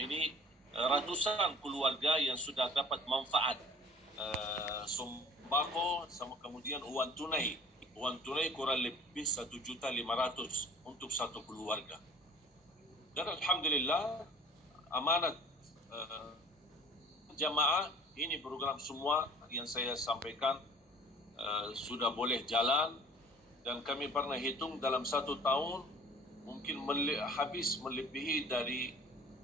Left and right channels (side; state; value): both; normal; correlation 0.48